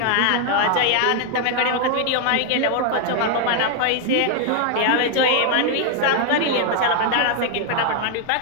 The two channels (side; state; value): both; different; correlation 0.00